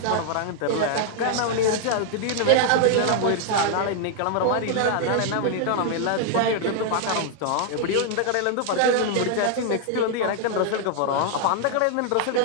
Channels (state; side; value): different; both; correlation 0.00